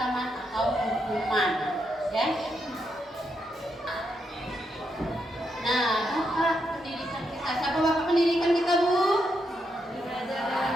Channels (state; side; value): normal; both; correlation 0.81